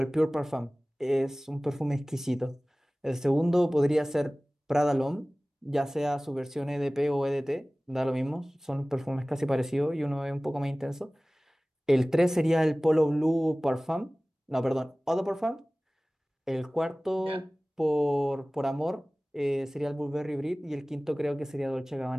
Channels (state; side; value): normal; both; correlation 0.98